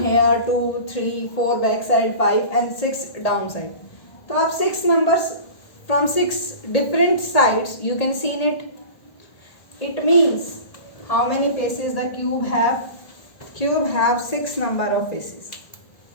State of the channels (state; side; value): late; right; 1.6 ms